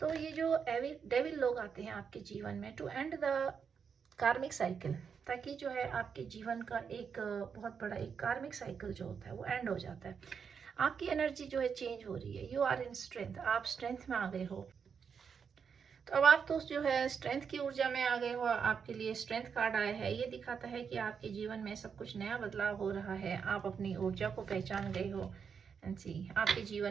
ये जो डेविल लोग आते हैं आपके जीवन में to end the karmic cycle, ताकि जो है आपके जीवन का एक बहुत बड़ा एक कार्मिक साइकिल जो होता है वो एंड हो जाता है। आपकी एनर्जी जो है चेंज हो रही है। यू आर इन स्ट्रेंथ, आप स्ट्रेंथ में आ गए हो। तो अब आप तो जो है स्ट्रेंथ की ऊर्जा में आ गए हो। आपके लिए स्ट्रेंथ कार्ड आया है, ये दिखाता है कि आपके जीवन में सब कुछ नया बदलाव हो रहा है। आप अपनी ऊर्जा को पहचान गए हो। एंड सी, आपके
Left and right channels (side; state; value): left; quieter; 6.5 dB